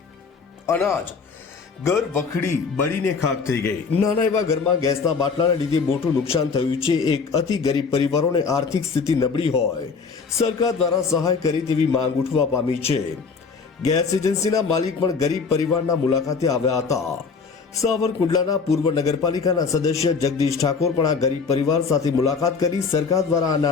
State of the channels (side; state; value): right; quieter; 5.2 dB